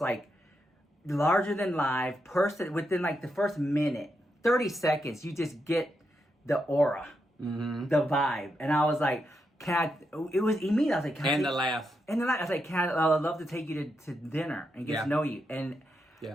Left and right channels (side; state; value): both; normal; correlation 0.83